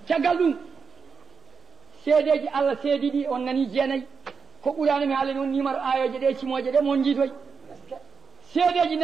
caggal ɗum seedeji Allah seedi ɗi on nani jeenayyi ko ɓurano mi haala noon numéro ayoje ɗe cimoje ɗe mon jiitoy seedeji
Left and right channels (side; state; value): left; quieter; 5.7 dB